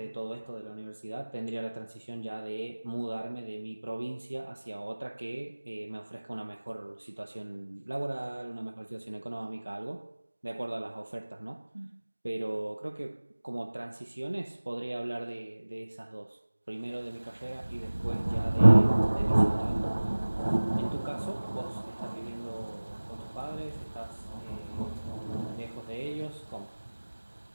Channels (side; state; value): both; inverted; correlation -1.00